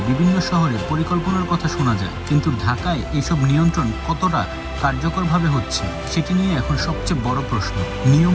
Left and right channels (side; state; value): both; identical; correlation 1.00